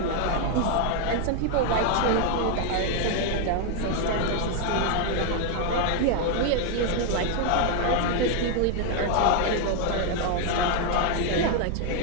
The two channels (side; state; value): both; different; correlation 0.00